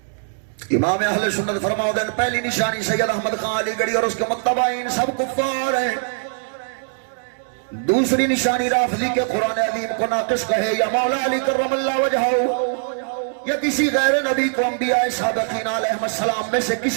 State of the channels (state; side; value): silent; left; digital silence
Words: امام اہل سنت فرماؤ دین پہلی نشانی سید احمد خان علی گڑھی اور اس کے متبعین سب کفار ہیں. دوسری نشانی رافضی کے قرآن عظیم کو ناقص کہے یا مولا علی کرم اللہ وجہہ یا کسی غیر نبی کو انبیاء سابقین علیہ السلام میں سے